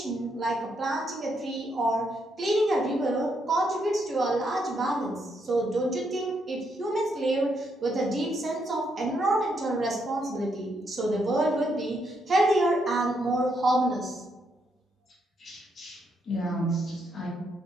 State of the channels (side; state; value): both; normal; correlation 0.77